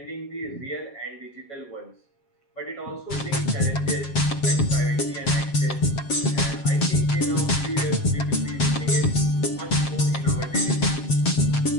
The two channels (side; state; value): right; late; 7.5 ms